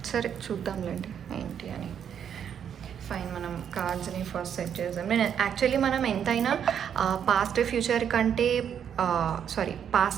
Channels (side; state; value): left; quieter; 8.5 dB